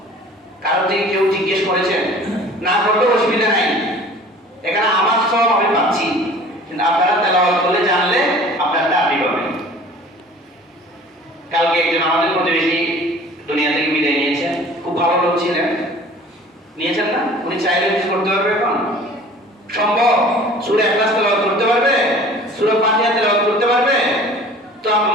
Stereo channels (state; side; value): normal; both; correlation 0.46